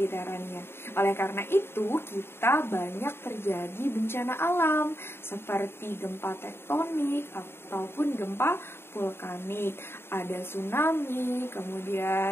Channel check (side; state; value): right; late; 0.11 ms